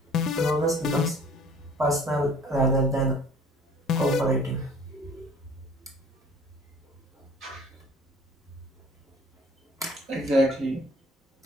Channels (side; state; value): both; normal; correlation 0.50